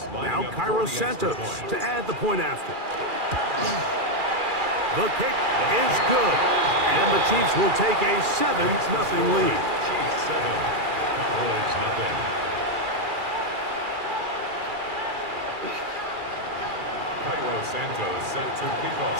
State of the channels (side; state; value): left; late; 2.4 ms